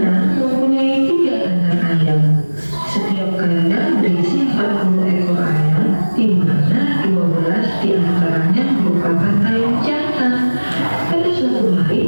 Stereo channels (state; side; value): inverted; both; correlation -1.00